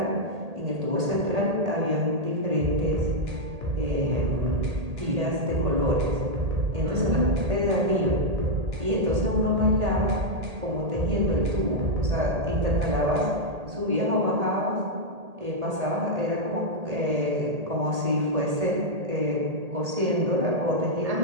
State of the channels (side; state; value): left; late; 1.8 ms